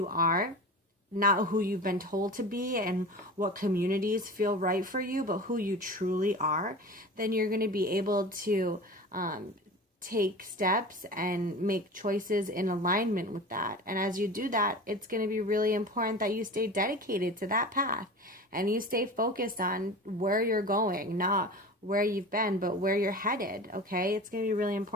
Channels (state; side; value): normal; both; correlation 0.34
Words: are, not who you've been told to be and what communities feel right for you, but who you truly are, then you're going to be able to take steps and make choices in alignment with that. And as you do that, it's going to be really important that you stay dedicated to that path, and you stay focused on where you're going, not where you've been, but where you're headed, okay? It's going to be really